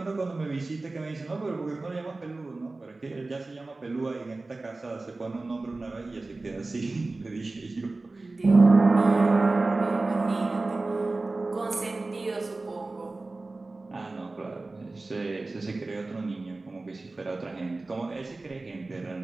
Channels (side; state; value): left; quieter; 3.3 dB